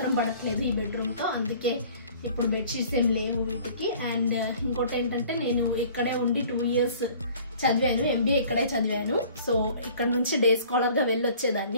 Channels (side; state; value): both; inverted; correlation -0.51